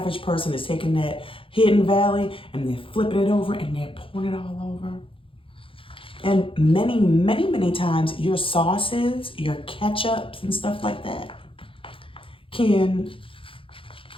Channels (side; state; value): right; late; 0.26 ms